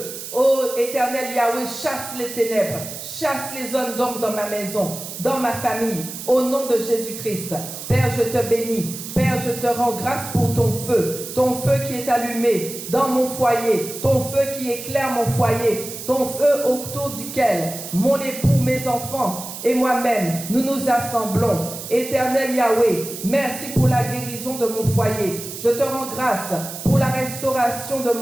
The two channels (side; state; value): right; noise; hiss, 10 dB below the sound